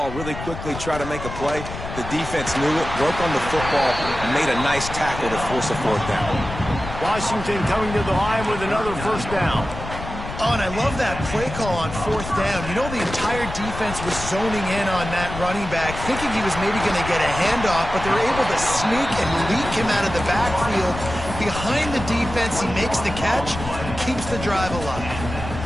really quickly, try to make a play. The defense knew it, broke on the football, and made a nice tackle to force a 4th down. Washington coming to the line with another 1st down. Oh, and I love that play call on 4th down. You know, the entire defense was zoning in on that running back, thinking he was maybe going to get a handoff, but they were able to sneak and leak him out of the backfield. Behind the defense, he makes the catch and keeps the drive alive.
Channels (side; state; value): left; noise; rumble, 9 dB below the sound